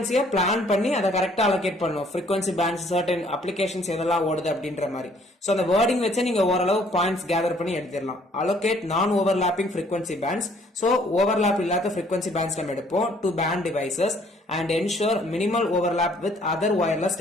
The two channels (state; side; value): normal; both; correlation 0.61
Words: பிளான் பண்ணி அதை கரெக்டா allocate பண்ணும். frequency bands certain applications எதெல்லாம் ஓடுது அப்படின்ற மாதிரி. so அந்த wording வச்சு நீங்க ஓரளவு பாயிண்ட்ஸ் கேதர் பண்ணி எடுத்துடலாம். allocate non overlapping frequency bands, so overlap இல்லாத frequency bands நம்ம எடுப்போம் to band devices and ensure minimal overlap with other wireless